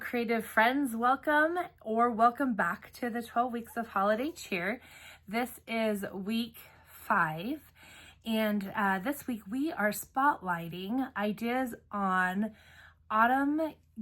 friends. Welcome back to the 12 weeks of holiday cheer. This is week 5, and this week we are spotlighting ideas on autumn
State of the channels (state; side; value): identical; both; correlation 1.00